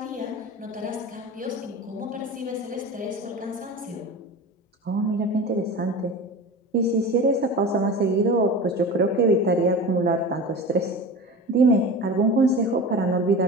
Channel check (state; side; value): normal; both; correlation 0.32